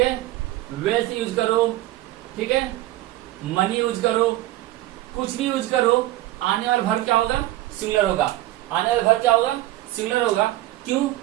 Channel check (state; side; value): quieter; left; 16.0 dB